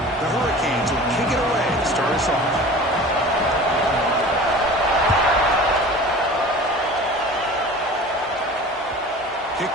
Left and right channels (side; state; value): both; normal; correlation 0.40